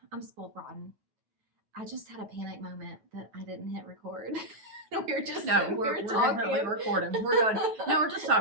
I'm spoiled rotten. I just had a panic moment that I didn't hit record. We're definitely recording. We're just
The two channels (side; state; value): left; late; 9.3 ms